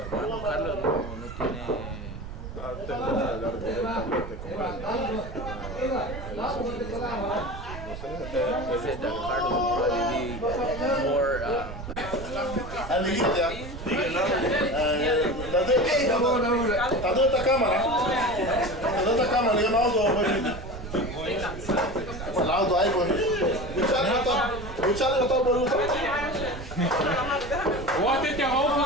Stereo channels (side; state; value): right; noise; rumble, 10 dB below the sound